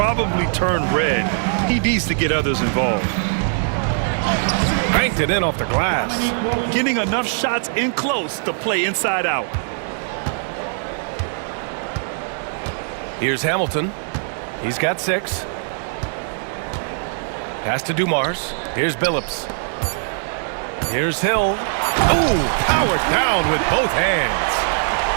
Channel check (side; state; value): left; silent; digital silence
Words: turn red. He needs to get others involved. Banked it in off the glass. Getting enough shots in close to play inside out. Here's Hamilton. He's got 6. Pass to Dumars. Here's Billups. Here's Hill. Ooh, powered down with both hands.